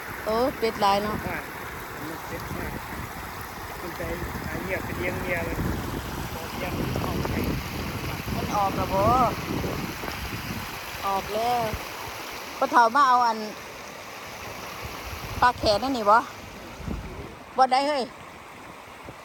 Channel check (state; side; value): identical; both; correlation 1.00